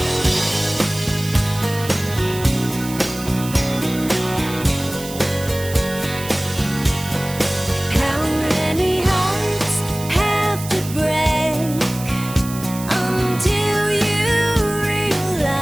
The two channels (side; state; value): right; noise; hiss, 12 dB below the sound